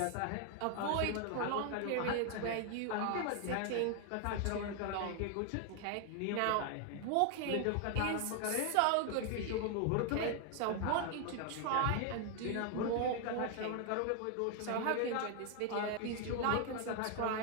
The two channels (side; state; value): both; different; correlation 0.00